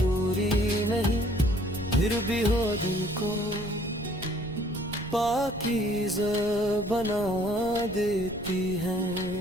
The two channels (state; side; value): noise; left; rumble, 14 dB below the sound